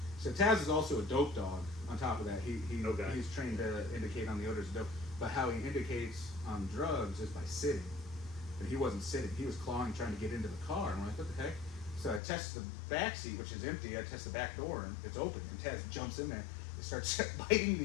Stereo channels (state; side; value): drops out; right; at 12.2 s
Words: So Taz is also a dope dog. On top of that, he's trained to indicate on the odors of dope. But how he indicates on drugs is by sitting. And he wasn't sitting. He was clawing, trying to get into the car. And I'm like, what the heck? So I test the back seat, which is empty. I test the back door, and it's open. And Taz jumps in there and starts biting